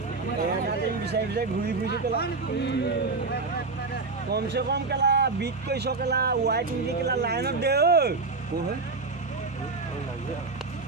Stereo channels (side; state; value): left; quieter; 4.0 dB